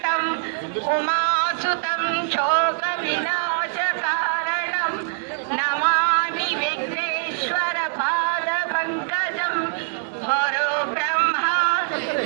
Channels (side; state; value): left; silent; 63 dB below the other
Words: ಉಮಾಸುತಂ ಶೋಕ ವಿನಾಶ ಕಾರಣಂ ನಮಾಮಿ ವಿಘ್ನೇಶ್ವರ ಪಾದ ಪಂಕಜಂ. ಗುರು ಬ್ರಹ್ಮ